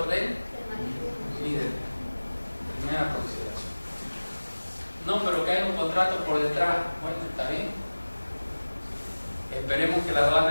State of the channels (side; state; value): both; inverted; correlation -1.00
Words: del líder. Primera consideración. No, pero que hay un contrato por detrás. Bueno, está bien. Esperemos que la